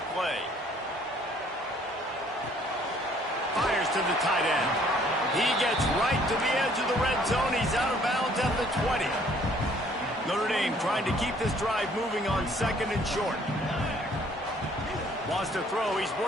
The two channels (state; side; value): normal; both; correlation 0.60